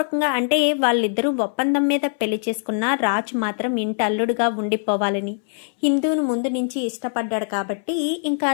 అంటే వాళ్ళిద్దరూ ఒప్పందం మీద పెళ్లి చేసుకున్న రాజు మాత్రం ఇంటి అల్లుడుగా ఉండిపోవాలని ఇందును ముందు నుంచి ఇష్టపడ్డాడు కాబట్టి ఇంకా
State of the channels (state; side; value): silent; right; 64 dB below the other